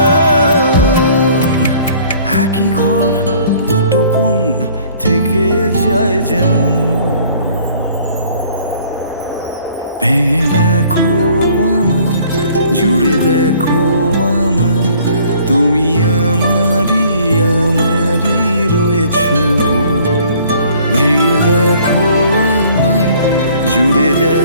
একই ঘর দুটো কোণ থেকে যায় যেমন। ভেঙে দেখো আমার, জুড়ে দেখো আমার, তুমি আমারই আমারই রয়েছো। ভেঙে দেখো আমায়, জুড়ে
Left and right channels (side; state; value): both; inverted; correlation -0.56